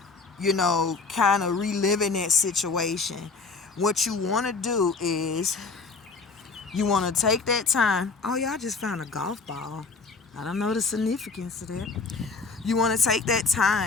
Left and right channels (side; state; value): right; quieter; 4.2 dB